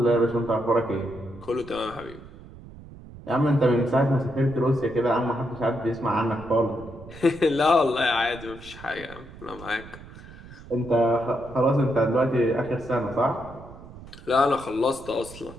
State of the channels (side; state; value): right; noise; rumble, 17 dB below the sound